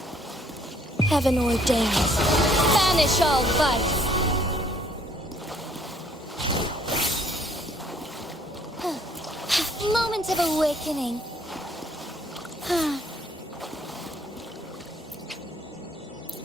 Heaven ordains. Banish all vice. Moment of awakening.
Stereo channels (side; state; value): both; normal; correlation 0.62